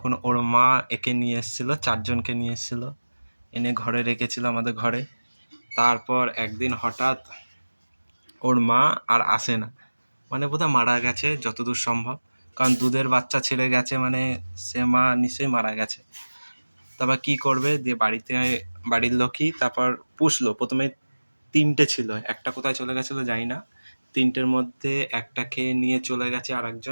ওর মা একে নিয়ে এসেছিলো, 4জনকে নিয়ে এসেছিলো, এনে ঘরে রেখেছিল আমাদের ঘরে। তারপর একদিন হঠাৎ ওর মা আর আসে না, মানে বোধহয় মারা গেছে যতদূর সম্ভব, কারণ দুধের বাচ্চা ছেড়ে গেছে, মানে সে মা নিশ্চয়ই মারা গেছে। তারপর কি করবে, দিয়ে বাড়িতে বাড়ির লোকই তারপর পুষলো। প্রথমে 3টে ছিল, একটা কোথায় চলে গেছিলো জানি না। 3টের মধ্যে একটাকে নিয়ে চলে গেছে আর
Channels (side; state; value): both; inverted; correlation -1.00